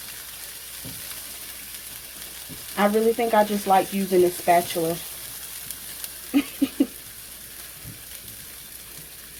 I really think I just like using a spatula.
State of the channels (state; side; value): identical; both; correlation 1.00